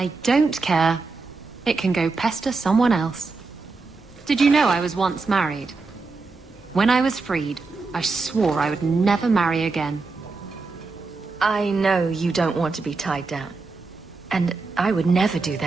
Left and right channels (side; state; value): left; quieter; 4.0 dB